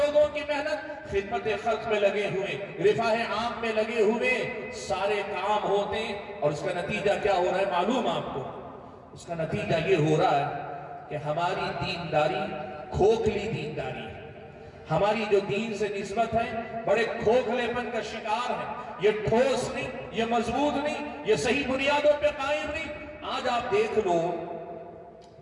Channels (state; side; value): identical; both; correlation 1.00